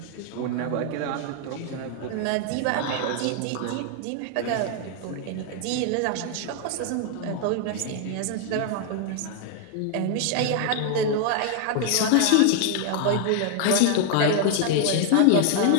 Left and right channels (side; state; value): both; different; correlation 0.00